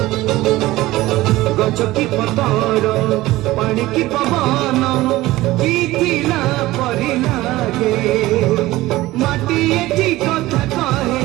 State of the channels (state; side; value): quieter; left; 17.7 dB